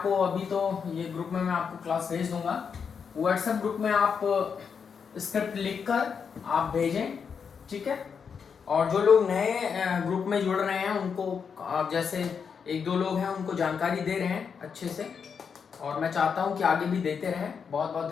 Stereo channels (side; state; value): right; quieter; 6.4 dB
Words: अभी तो ये ग्रुप में मैं आपको क्लास भेज दूंगा, व्हाट्सएप ग्रुप में आप स्क्रिप्ट लिखकर आप भेजें, ठीक है। और जो लोग नए ग्रुप में जुड़ रहे हैं उनको आप जैसे एक दो लोग हैं उनको जानकारी दे रहे हैं अच्छे से, और मैं चाहता हूं कि आगे भी देते रहें। बहुत बहुत